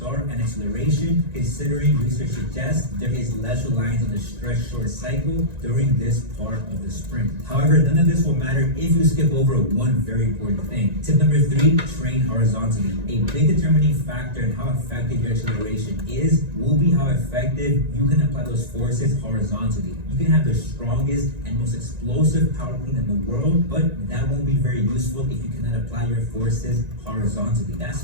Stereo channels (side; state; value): left; late; 1.9 ms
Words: and acceleration, considering research suggests there is less reliance on the stretch short cycle during this part of the sprint. However, none of this will matter if you skip over one very important thing. Tip number 3, train horizontally. A big determining factor in how effective your acceleration is will be how effective you can apply those forces horizontally. You can have the strongest and most explosive power clean in the world, but that won't be very useful if you cannot apply your forces horizontally. That's